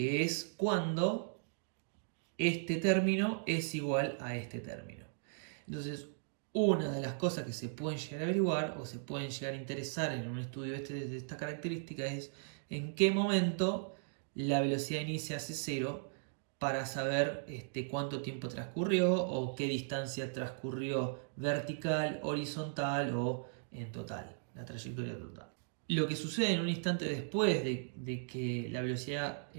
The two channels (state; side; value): silent; left; digital silence